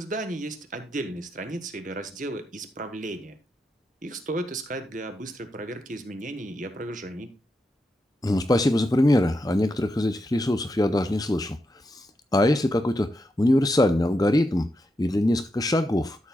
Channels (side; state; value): both; normal; correlation 0.85